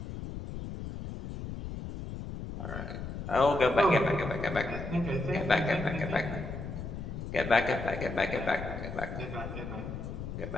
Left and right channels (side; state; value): left; noise; rumble, 7 dB below the sound